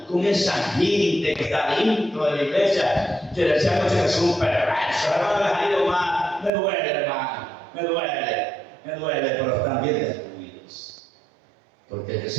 con esa gente que está dentro de la iglesia, que decíamos que son perversos, hermano, más, me duele, hermano, me duele, pero están bien destruidos, porque el que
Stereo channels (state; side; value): drops out; left; at 6.5 s